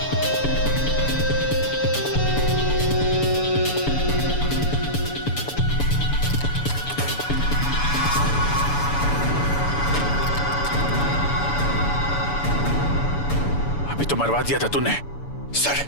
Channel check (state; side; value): late; right; 7.0 ms